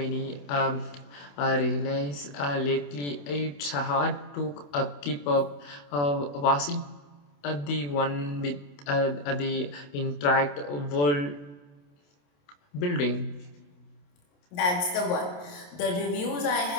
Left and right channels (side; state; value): right; late; 28 ms